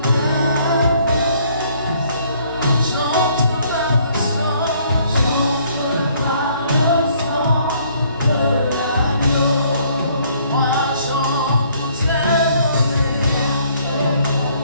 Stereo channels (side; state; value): both; inverted; correlation -0.63